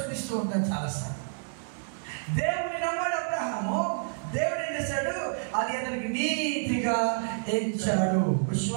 ఉంటాను చాలాసార్లు. దేవుని నమ్మాడు అబ్రహాము. దేవుడు ఏం చేశాడు? అది అతనికి నీతిగా ఎంచాడు.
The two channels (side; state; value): left; silent; digital silence